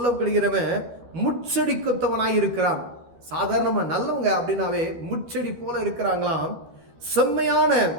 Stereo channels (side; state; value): left; late; 12 ms